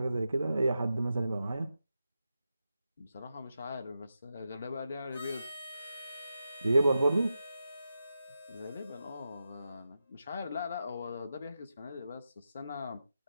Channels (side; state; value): both; inverted; correlation -0.89